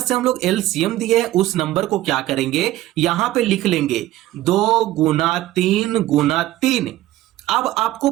हम लोग एलसीएम दिए हैं उस नंबर को क्या करेंगे, यहां पे लिख लेंगे 2 गुना 3 अब आपको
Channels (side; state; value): left; quieter; 15.2 dB